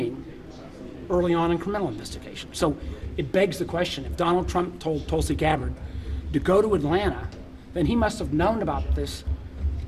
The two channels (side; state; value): both; identical; correlation 1.00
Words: early on in criminal investigation. So it begs the question, if Donald Trump told Tulsi Gabbard to go to Atlanta, then he must have known about this